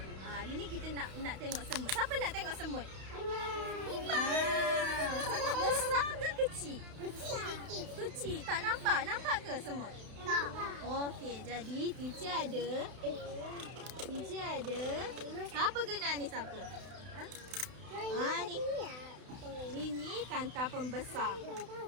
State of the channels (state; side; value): late; left; 32 ms